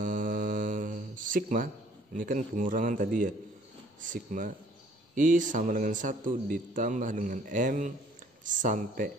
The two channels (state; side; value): normal; both; correlation 0.58